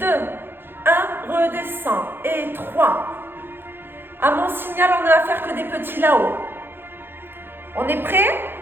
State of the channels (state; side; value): late; left; 0.10 ms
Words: 1. Redescend. Et 3. À mon signal, on ne va faire que des petits là-haut. On est prêt?